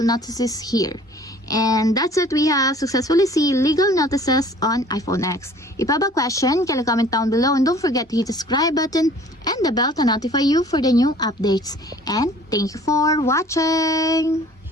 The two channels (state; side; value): normal; both; correlation 0.51